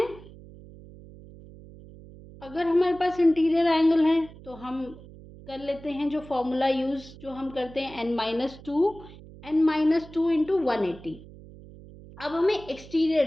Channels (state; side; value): noise; right; hum, 19 dB below the sound